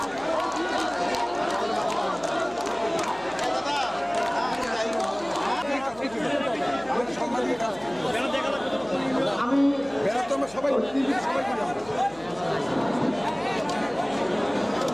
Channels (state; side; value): noise; left; hum, 22 dB below the sound